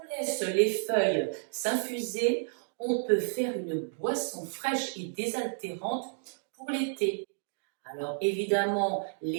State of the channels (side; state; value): left; silent; digital silence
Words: laisse les feuilles s'infuser, on peut faire une boisson fraîche et désaltérante pour l'été. Alors évidemment,